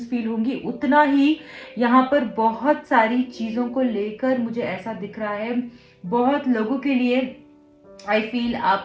फील होंगी, उतना ही यहाँ पर बहुत सारी चीज़ों को लेकर मुझे ऐसा दिख रहा है. बहुत लोगों के लिए आई फील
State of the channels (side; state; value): both; identical; correlation 1.00